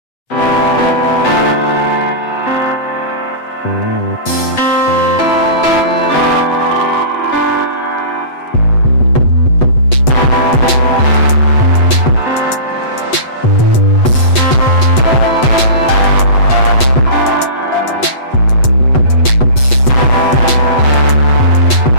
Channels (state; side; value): late; right; 8.1 ms